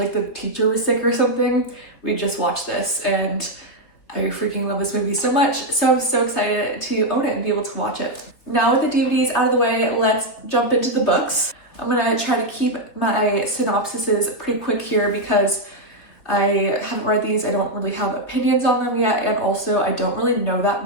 the teacher was sick or something. We'd just watch this and I freaking love this movie so much. So I'm so excited to own it and be able to watch it. Now with the DVDs out of the way, let's jump into the books. I'm gonna try to keep my synopsises pretty quick here because I haven't read these. I don't really have opinions on them yet. And also I don't really know that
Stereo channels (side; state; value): right; late; 3.5 ms